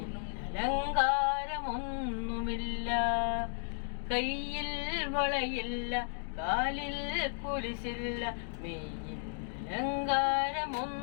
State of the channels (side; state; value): right; silent; digital silence